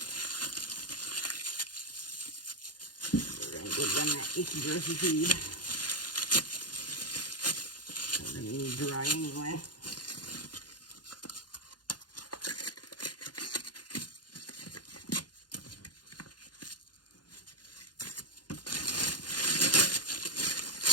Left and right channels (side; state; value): right; late; 0.70 ms